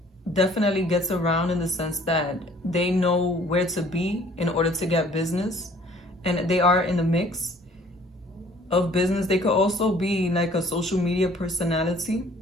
definitely gets around in the sense that they know where to be in order to get business. And they are in the mix of business. They could also be like a social media personality.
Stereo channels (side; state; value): both; normal; correlation 0.56